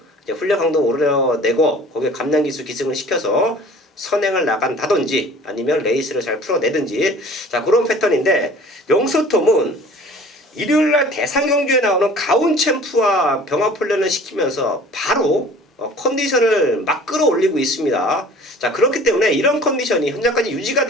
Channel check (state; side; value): normal; both; correlation 0.47